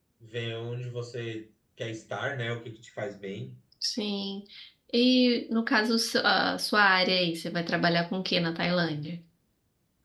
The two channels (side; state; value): both; identical; correlation 1.00